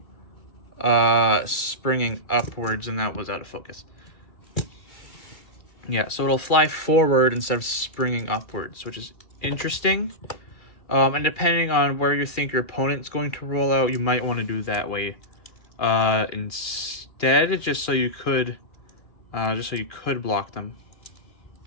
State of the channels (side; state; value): right; late; 2.4 ms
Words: springing upwards, and that was out of focus. Yeah, so it'll fly forward instead of springing upwards, which is interesting. And depending on where you think your opponent's going to roll out, you might want to do that way instead, just so you could block them.